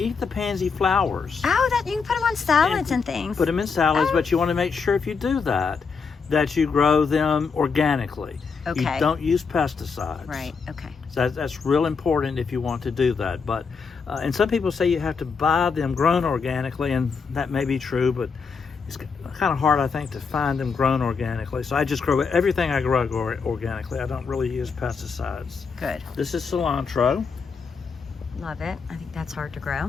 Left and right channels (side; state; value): right; quieter; 5.4 dB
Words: the pansy flowers. Oh, you can put them on salads and things. Put them in salads, but you want to make sure if you do that you grow them organically. Okay. You don't use pesticides. Right, okay. So that's real important if you want to do that. But and some people say you have to buy them grown organically, and that may be true, but it's kind of hard, I think, to find them grown organically. So I just grow everything I grow organically. I don't really use pesticides. Good. This is cilantro. Love it. I think that's hard to